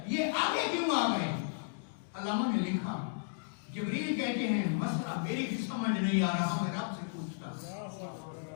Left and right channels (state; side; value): silent; right; digital silence